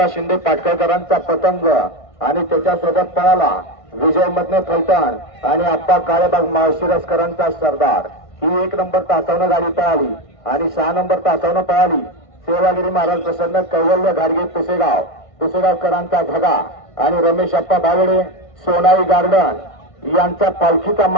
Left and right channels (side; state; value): right; late; 1.5 ms